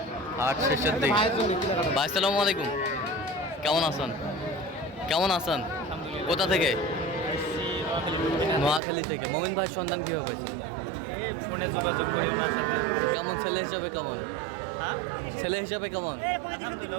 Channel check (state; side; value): drops out; left; at 8.8 s